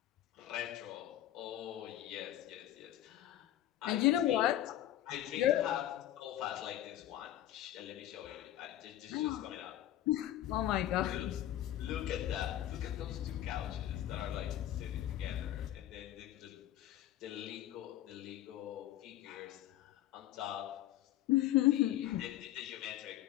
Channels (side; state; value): right; quieter; 13.0 dB